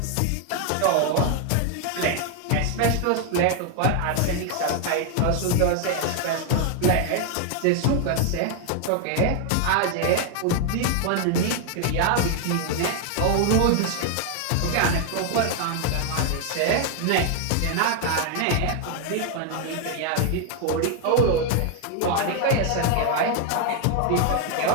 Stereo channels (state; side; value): different; both; correlation 0.01